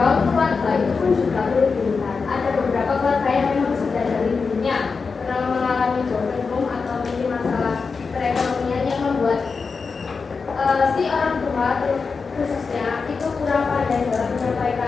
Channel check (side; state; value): right; quieter; 4.9 dB